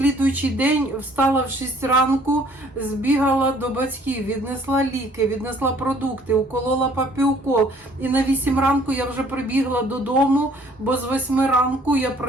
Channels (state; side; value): normal; both; correlation 0.58